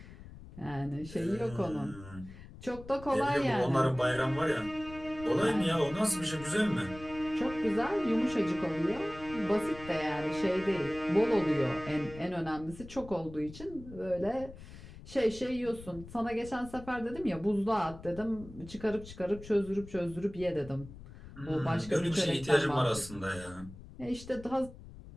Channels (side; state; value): left; noise; rumble, 16 dB below the sound